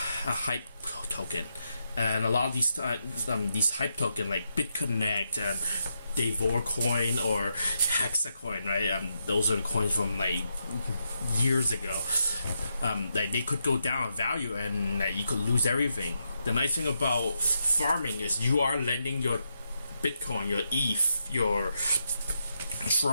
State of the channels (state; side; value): inverted; both; correlation -0.83